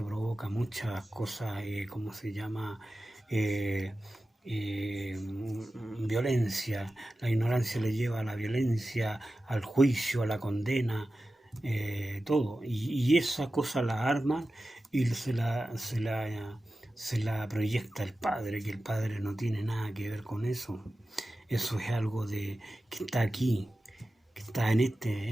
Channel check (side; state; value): both; normal; correlation 0.94